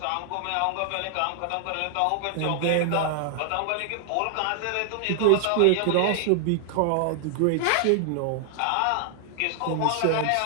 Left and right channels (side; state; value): both; different; correlation 0.00